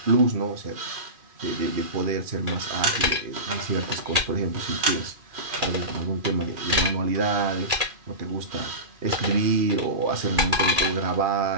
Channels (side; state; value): left; late; 2.4 ms